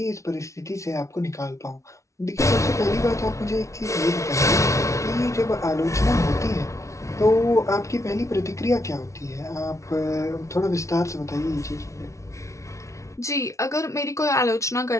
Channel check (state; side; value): late; right; 0.14 ms